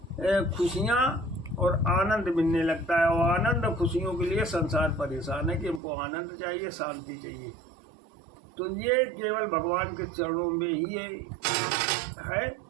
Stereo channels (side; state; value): left; drops out; at 5.8 s